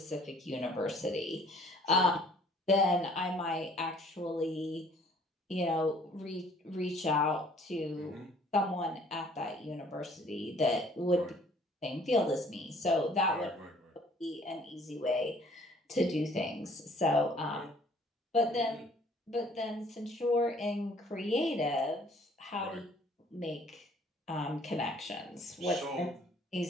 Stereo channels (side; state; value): both; normal; correlation 0.57